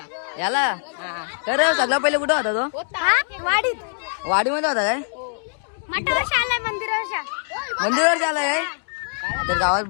याला खरं सगळं पहिले कुठं होता तो? वाडीत. वाडीमध्ये होता काय? मंदिरावर आलाय. तर गावात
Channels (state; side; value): silent; right; 64 dB below the other